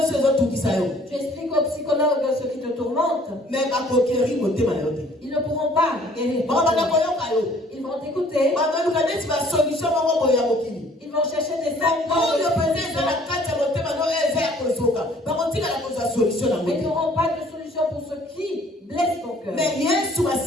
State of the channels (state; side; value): normal; both; correlation 0.57